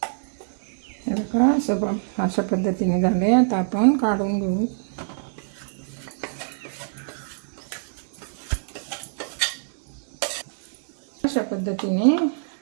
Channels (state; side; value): silent; left; digital silence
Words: हे बघा, अशा पद्धतीने झाले। आता आपण काढून घेऊ। अशा पद्धतीने